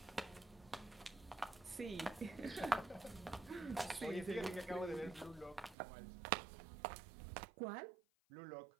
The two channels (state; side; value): drops out; left; at 5.8 s